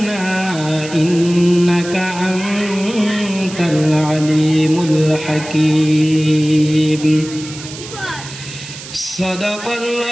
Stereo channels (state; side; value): noise; right; hiss, 13 dB below the sound